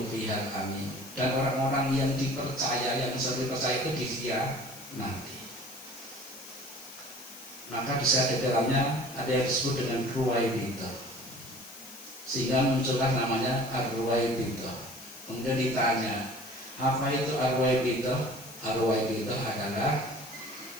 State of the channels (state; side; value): noise; left; hiss, 16 dB below the sound